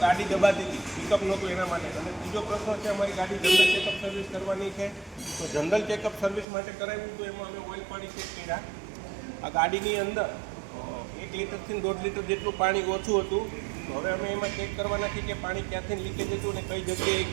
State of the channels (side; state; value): left; drops out; at 6.5 s